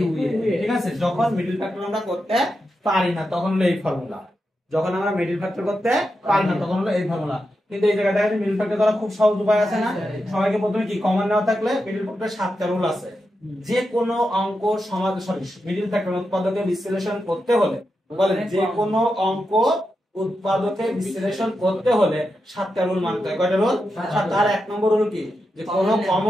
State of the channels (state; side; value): normal; both; correlation 0.88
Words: ঠিক আছে যখন মিডল ফ্যাক্টর আমরা করতে পারি না তখন হলো এই ফর্মুলা যখন আমরা মিডল ফ্যাক্টর করতে পারি না তখন হলো এই ফর্মুলা কিন্তু এই জায়গায় দেখেন মিডল ফ্যাক্টর করা খুব সহজ উপায় আছে না সবাইকে প্রথমে কি কমন নেওয়া থাকলে মিডল ফ্যাক্টর 7টা রুল আছে যে কোনো অঙ্ক সমাধান মিডল ফ্যাক্টর উৎপাদকে বিশ্লেষণ করতে হলে বলেন যে কোনো অঙ্ক উৎপাদকে বিশ্লেষণ করতে হলে 7টা রুল মানতে হয় কয়টা রুল 7 তার এক নম্বর রুল কি যে কোনো